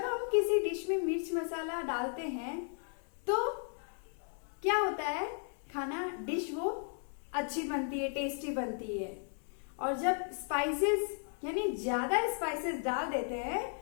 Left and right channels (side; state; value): right; silent; 54 dB below the other